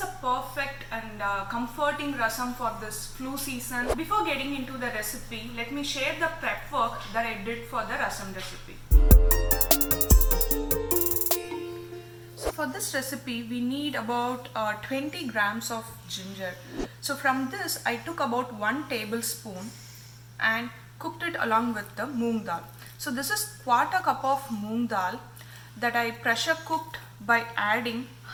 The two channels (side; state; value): both; identical; correlation 1.00